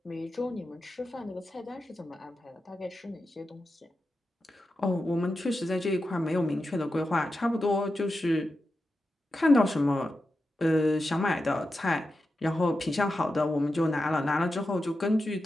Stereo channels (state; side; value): normal; both; correlation 0.90